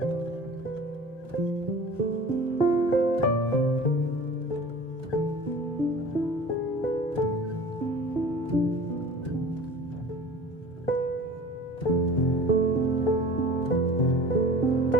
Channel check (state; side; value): normal; both; correlation 0.40